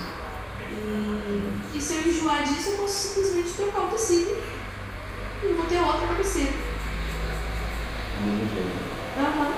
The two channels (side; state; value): both; identical; correlation 1.00